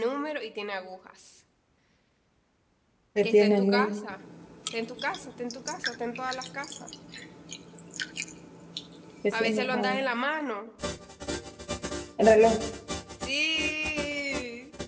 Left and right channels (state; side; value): identical; both; correlation 1.00